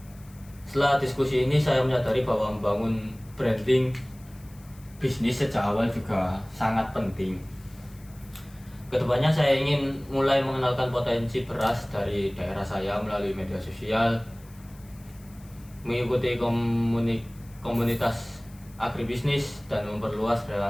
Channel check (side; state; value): left; noise; hiss, 26 dB below the sound